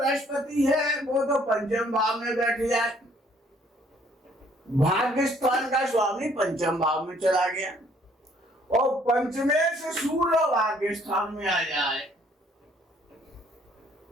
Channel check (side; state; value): both; normal; correlation 0.62